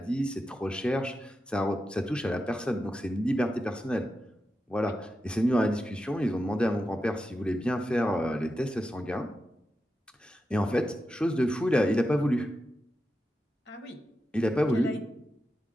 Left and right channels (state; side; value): normal; both; correlation 0.89